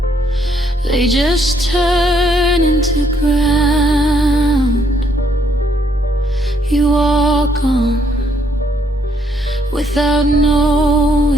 they just turn into ground. You walk gone without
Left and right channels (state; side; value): normal; both; correlation 0.70